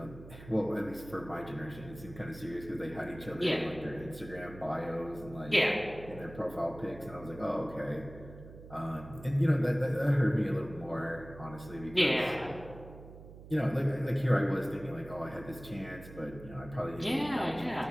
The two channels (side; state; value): right; noise; hum, 16 dB below the sound